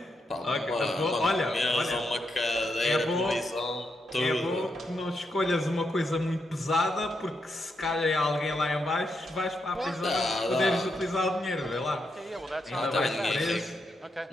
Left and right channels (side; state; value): both; normal; correlation 0.82